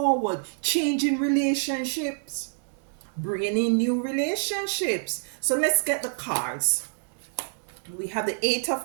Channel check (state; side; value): silent; left; digital silence